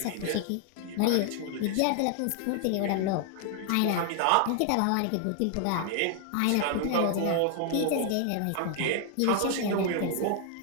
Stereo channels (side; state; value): both; different; correlation 0.00